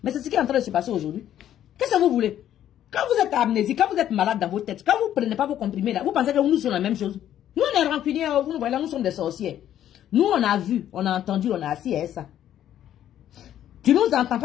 Mais c'est ce qui est en train de se passer aujourd'hui. Qu'est-ce que vous voulez? Quand vous êtes amnésique, quand vous êtes malade dans vos têtes, quand vous ne prenez pas vos comprimés là, vous pensez que nous sommes la même chose. Nous on est rancuniers, vous nous voyez là, nous sommes des sorciers. Nous on a vu, on a entendu, on a assis à ça. Tu nous entends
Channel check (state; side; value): quieter; right; 11.2 dB